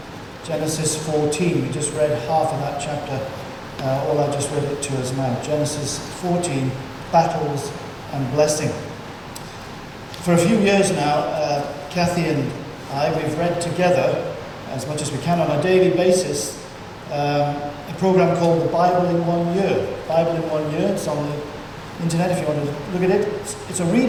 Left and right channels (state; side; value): identical; both; correlation 1.00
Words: Genesis 14, we just read half of that chapter. I just read it to us now. Genesis 14, battles and blessing. For a few years now, Kathy and I, we've read together, as much as we can on a daily basis, a program called The Bible in 1 Year. Bible in 1 Year, it's on the internet if you want to look at it. It's a